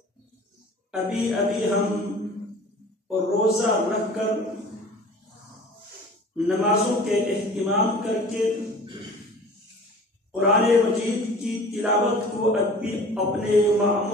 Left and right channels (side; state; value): both; normal; correlation 0.44